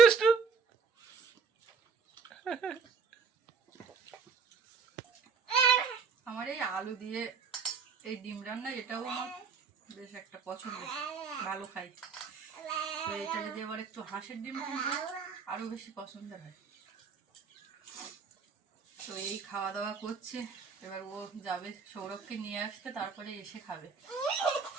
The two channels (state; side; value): quieter; left; 5.5 dB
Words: আমার এই আলু দিয়ে এই ডিম রান্না এটাও আমার বেশ একটা পছন্দ, ভালো খাই। তো এটা যদি আবার একটু হাঁসের ডিম কিনবো আরো বেশি পছন্দের হয়। তো এই খাওয়া দাওয়া করছে, এবার ও যাবে সৌরভকে নিয়ে আসতে, তারপরে এসে খাবে।